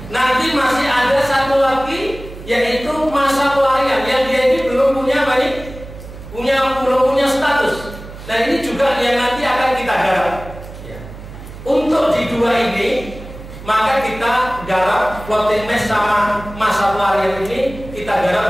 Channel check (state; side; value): noise; right; hum, 14 dB below the sound